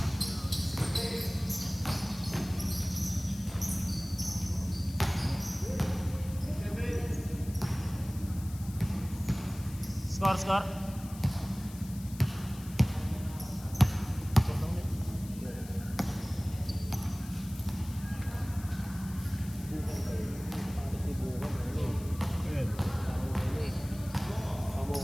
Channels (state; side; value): noise; left; hiss, 18 dB below the sound